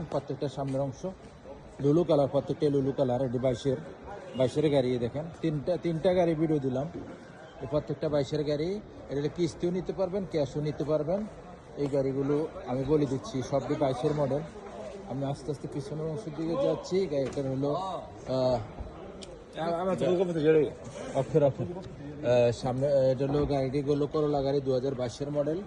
প্রত্যেকটা সামনের অংশ লুলু কালার, প্রত্যেকটা লুলু কালার। এটি 22-এর গাড়ি। দেখেন তিনটা গাড়ি ভিডিও দিলাম, এই প্রত্যেকটা 22-এর গাড়ি। এটা কিস্তিও নিতে পারবেন, ক্যাশও নিতে পারবেন। এই গাড়িগুলো আমি বলে দিচ্ছি সবটি 22-এর মডেল। আমি আস্তে আস্তে পিছনের অংশের দিকে যাচ্ছি। গাড়িটার হলো সামনে, এটা হলো গাড়িগুলো করলা গাড়ি 2022-এর মডেল।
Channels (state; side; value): identical; both; correlation 1.00